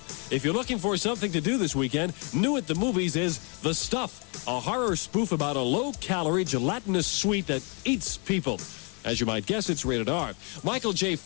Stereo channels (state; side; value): quieter; right; 35.1 dB